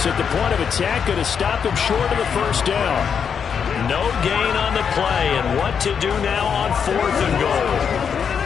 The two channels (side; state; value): right; quieter; 7.0 dB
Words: at the point of attack, going to stop him short of the first down. No gain on the play, and what to do now on 4th and goal.